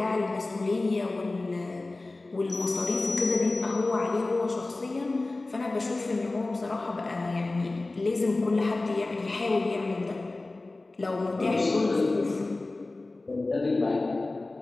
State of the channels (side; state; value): right; quieter; 3.1 dB